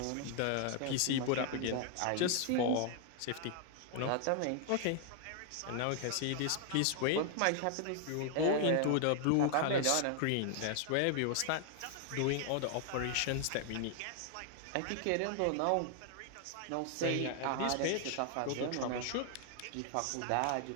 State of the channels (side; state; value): both; different; correlation 0.00